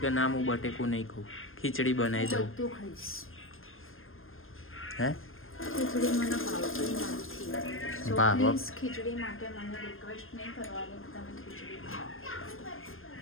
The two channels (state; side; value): late; right; 0.60 ms